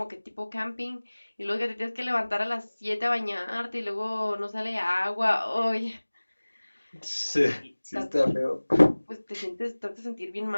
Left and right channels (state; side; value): inverted; both; correlation -1.00